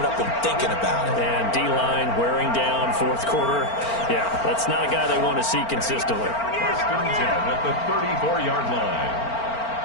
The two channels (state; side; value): late; right; 4.4 ms